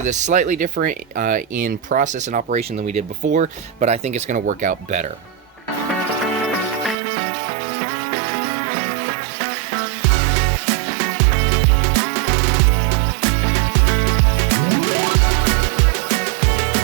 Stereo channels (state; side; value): drops out; left; at 7.0 s